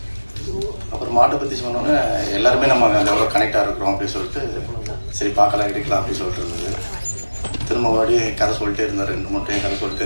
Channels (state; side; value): inverted; both; correlation -1.00